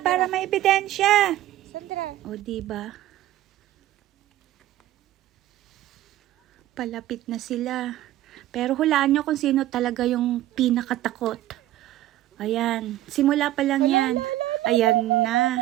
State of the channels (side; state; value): left; quieter; 14.3 dB